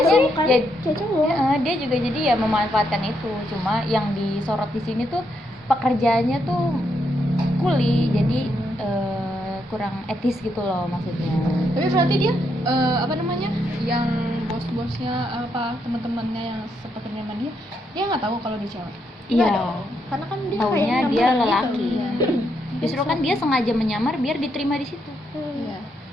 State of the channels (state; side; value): normal; both; correlation 0.78